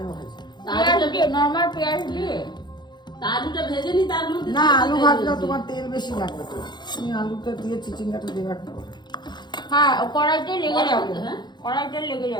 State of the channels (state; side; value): late; right; 0.21 ms